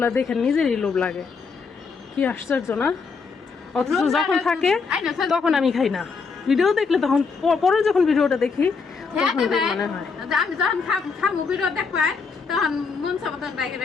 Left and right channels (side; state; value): right; quieter; 5.0 dB